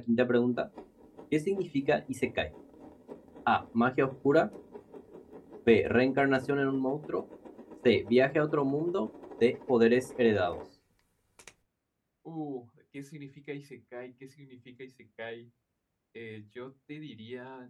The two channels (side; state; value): both; identical; correlation 1.00